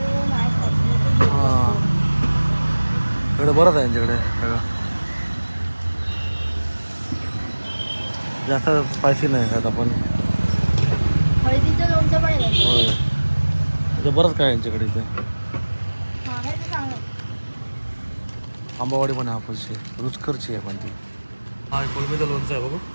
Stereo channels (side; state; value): both; inverted; correlation -1.00